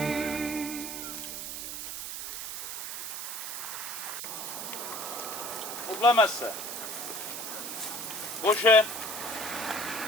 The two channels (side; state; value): right; noise; hiss, 5 dB below the sound